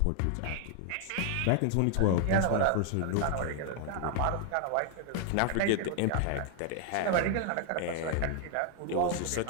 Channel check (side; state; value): both; different; correlation 0.00